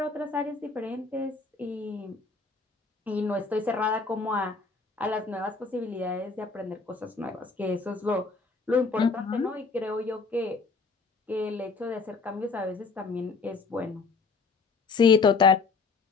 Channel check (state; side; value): quieter; right; 4.4 dB